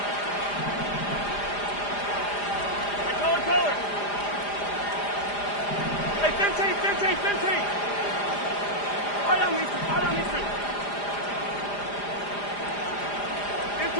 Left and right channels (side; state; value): right; late; 4.9 ms